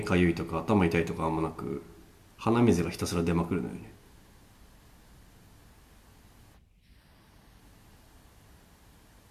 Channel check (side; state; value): both; identical; correlation 1.00